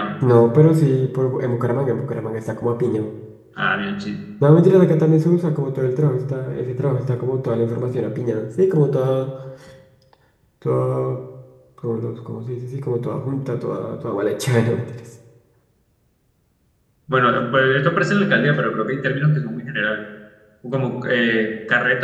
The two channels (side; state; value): both; identical; correlation 1.00